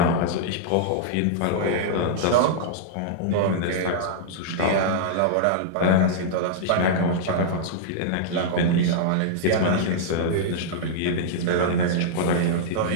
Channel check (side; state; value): both; different; correlation -0.02